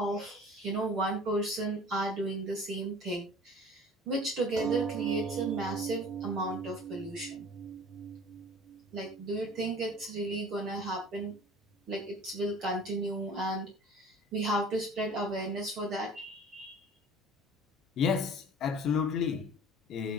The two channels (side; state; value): both; normal; correlation 0.45